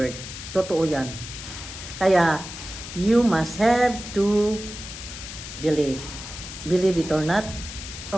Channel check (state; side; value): noise; left; hiss, 11 dB below the sound